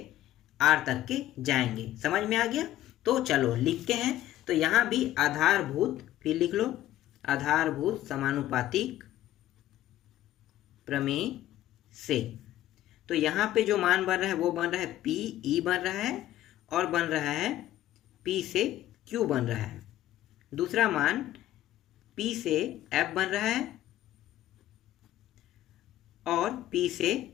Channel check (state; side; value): quieter; right; 13.8 dB